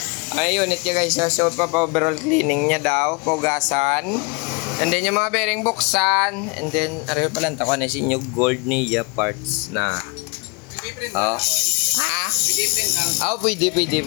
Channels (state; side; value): quieter; right; 30.2 dB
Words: Ay unit ya guys, so overall cleaning niya daw, pugasan. And then yung mga bearing buksan, and then aray pala ta ko na si new gold niya parts na. Oh. Ha? Oh, pwede.